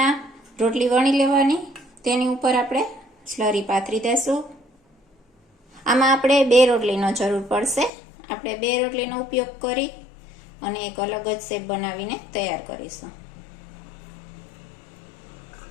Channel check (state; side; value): drops out; right; at 7.9 s